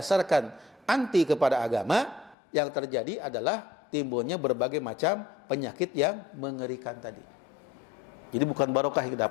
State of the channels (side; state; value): right; drops out; at 2.4 s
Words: anti kepada agama, yang terjadi adalah timbulnya berbagai macam penyakit yang mengerikan tadi. Jadi bukan barokah yang